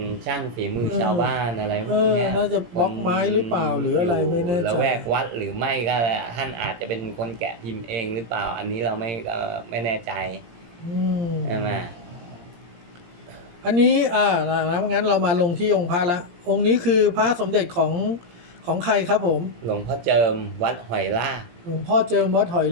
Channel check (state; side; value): late; left; 17 ms